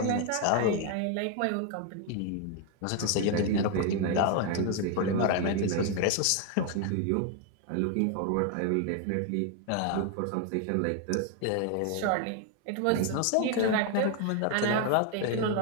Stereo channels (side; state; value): both; different; correlation 0.01